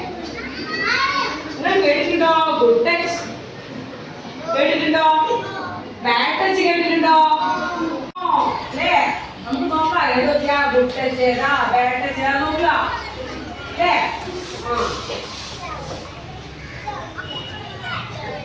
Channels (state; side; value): identical; both; correlation 1.00